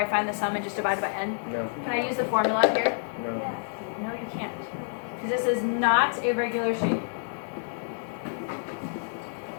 find the sum and just divide it by n? No. Can I use the formula up here? No. No, you can't. Because this is not a regular shape.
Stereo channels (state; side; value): silent; right; 59 dB below the other